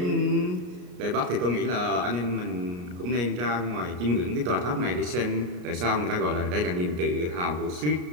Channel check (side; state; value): left; late; 33 ms